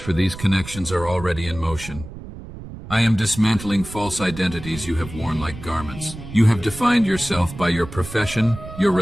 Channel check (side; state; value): right; noise; rumble, 13 dB below the sound